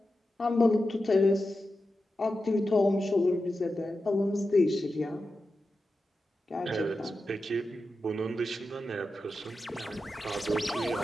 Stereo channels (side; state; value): both; normal; correlation 0.91